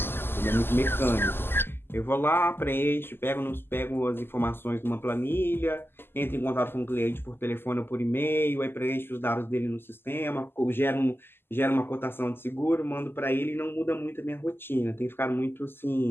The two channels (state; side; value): late; right; 0.11 ms